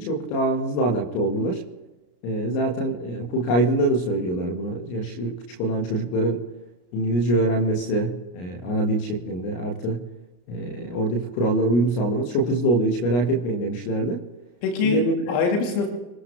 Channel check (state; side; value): late; right; 33 ms